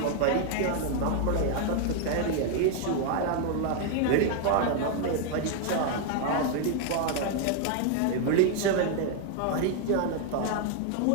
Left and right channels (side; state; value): both; different; correlation 0.00